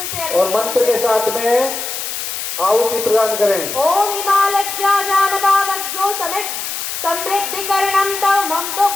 से और मंत्र के साथ में आहुति प्रदान करें। ओम हिमालज्जा जानबावज्ञो समित समृद्धिकरणं तव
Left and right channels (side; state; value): left; noise; hiss, 5 dB below the sound